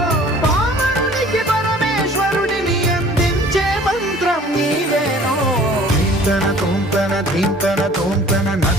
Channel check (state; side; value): normal; both; correlation 0.50